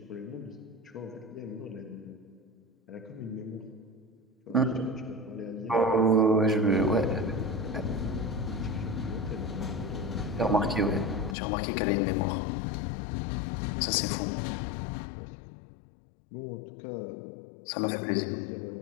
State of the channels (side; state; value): right; drops out; at 11.4 s